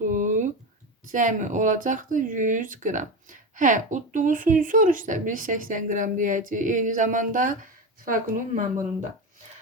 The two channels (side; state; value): both; normal; correlation 0.21